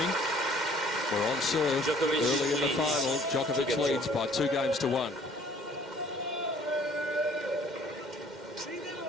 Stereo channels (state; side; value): normal; both; correlation 0.57